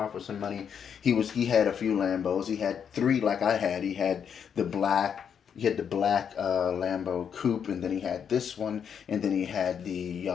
for some money. He had a few Lambos. He had three like I had. He had the black Lambo coupe, and then he had this one, and then he had the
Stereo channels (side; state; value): right; quieter; 7.7 dB